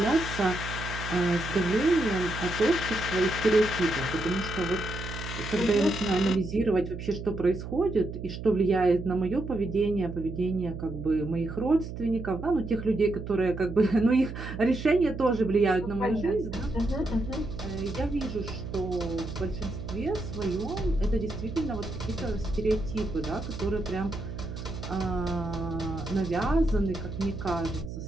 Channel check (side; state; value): right; noise; hum, 8 dB below the sound